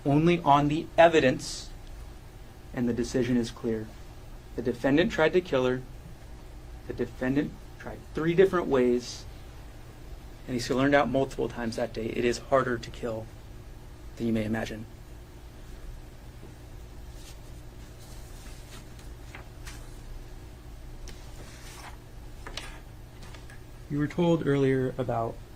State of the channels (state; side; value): identical; both; correlation 1.00